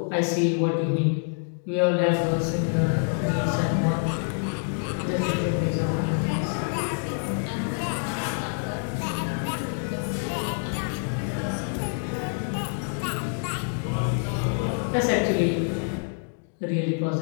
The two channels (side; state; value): right; silent; 56 dB below the other